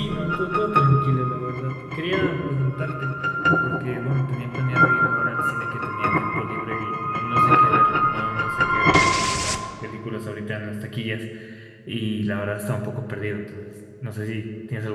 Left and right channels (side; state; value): both; identical; correlation 1.00